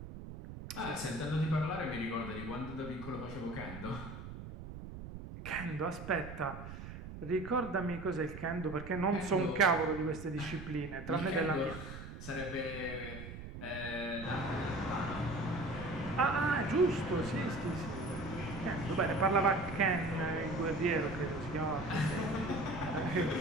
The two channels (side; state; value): right; noise; rumble, 11 dB below the sound